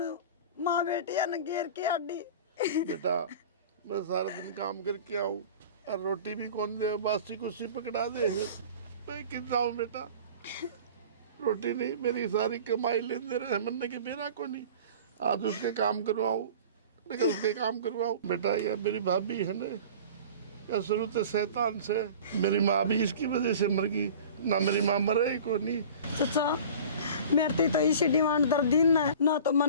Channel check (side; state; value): both; inverted; correlation -0.40